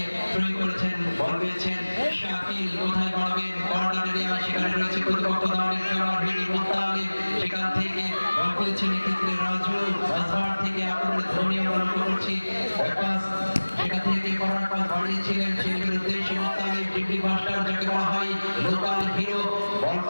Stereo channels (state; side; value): inverted; both; correlation -1.00